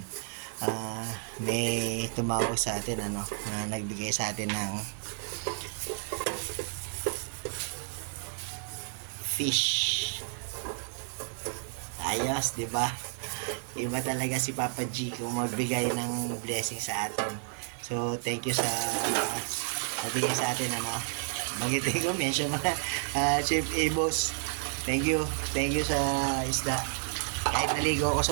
May tumawag sa atin na nagbigay sa atin ng fish. Ayos, di ba? Iba talaga si Papa G kung magbigay ng blessing sa atin. So, thank you sa nabigay sa atin, magitin ko, mention mo na, Chef Abos. Thank you. Thank you sa isda. Kahit naligo ako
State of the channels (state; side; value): silent; left; 56 dB below the other